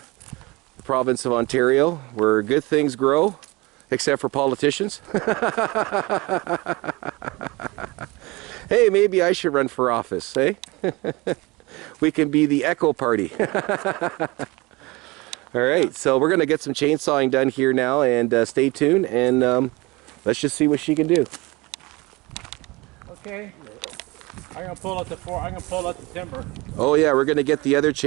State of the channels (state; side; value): quieter; left; 23.4 dB